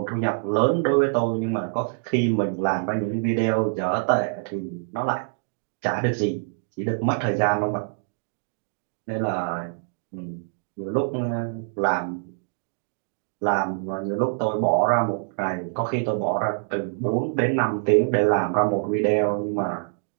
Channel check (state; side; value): silent; left; digital silence